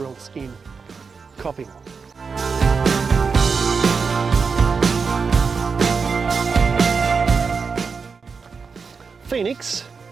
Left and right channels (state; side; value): quieter; left; 5.2 dB